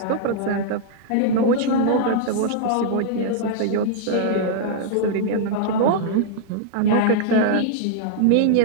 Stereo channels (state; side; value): different; both; correlation -0.01